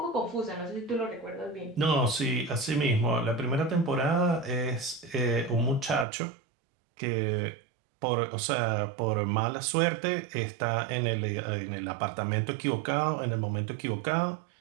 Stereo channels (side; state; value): left; drops out; at 6.1 s